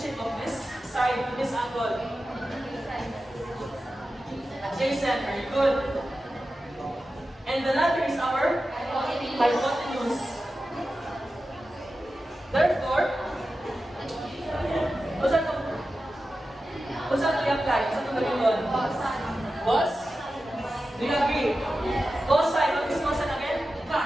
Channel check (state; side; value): normal; both; correlation 0.93